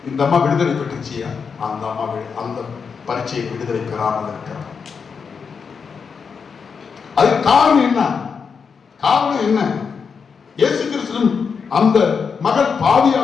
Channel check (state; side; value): quieter; right; 5.9 dB